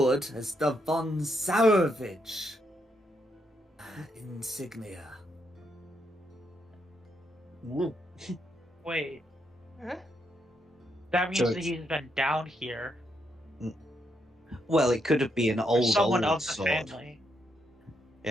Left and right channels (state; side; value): normal; both; correlation 0.79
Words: is the Von Zarevich insignia." Wait, Huh? that means So that it's- he's been down here. Well, it could be an Or old someone of the sword. family.